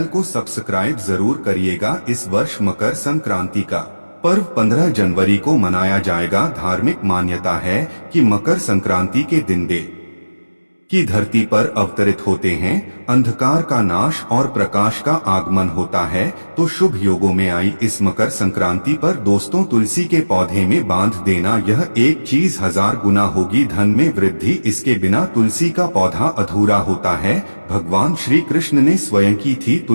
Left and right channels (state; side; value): inverted; both; correlation -1.00